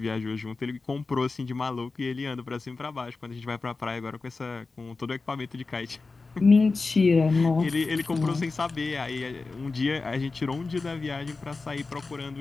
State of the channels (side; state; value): right; quieter; 3.9 dB